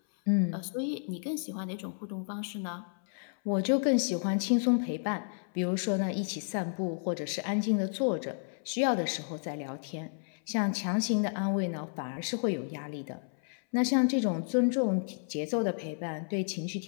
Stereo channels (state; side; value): silent; right; 57 dB below the other